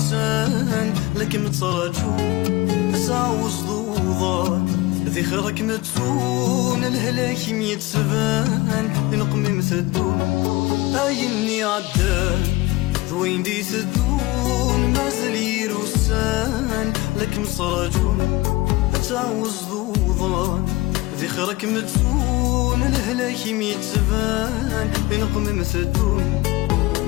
لكن متراجو تعوز ضوضان ذي خيرك متسون الهلاك ميتسبان نقمم ثدون أيني عدان ذوين دي ثدون مازال يروسان لكن متراجو تعوز ضوضان ذي خيرك متسون الهلاك ميتسبان نقمم ثدون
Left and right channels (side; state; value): right; quieter; 20.4 dB